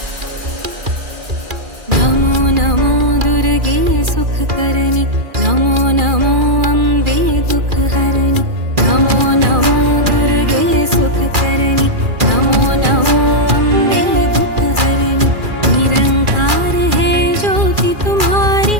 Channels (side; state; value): left; late; 2.4 ms